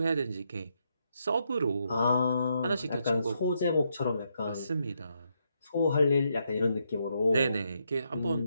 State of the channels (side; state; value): both; inverted; correlation -0.78